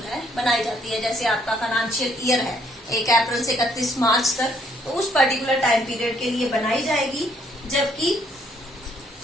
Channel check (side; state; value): both; normal; correlation 0.67